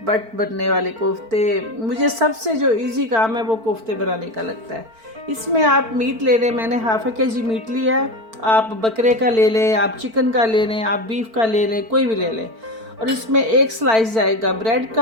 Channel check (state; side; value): late; left; 4.5 ms